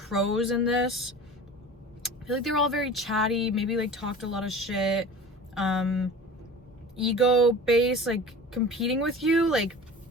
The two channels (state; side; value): normal; both; correlation 0.38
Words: in this, I feel like they were all very chatty, maybe like talked a lot of shit, ego based, like competing with you. Like,